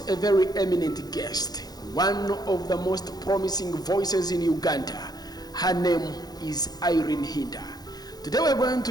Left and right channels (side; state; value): right; late; 0.19 ms